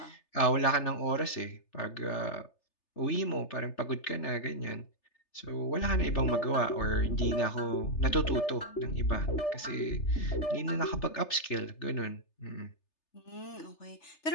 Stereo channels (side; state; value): right; late; 3.3 ms